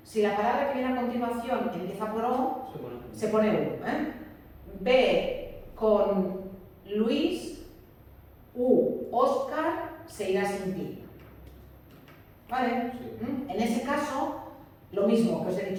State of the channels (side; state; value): both; identical; correlation 1.00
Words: si la palabra que viene a continuación empieza por O, se pone U. Ve con Luis, Óscar, se irá sin ti. ¿Vale? Sí. En ese caso, lo mismo que os he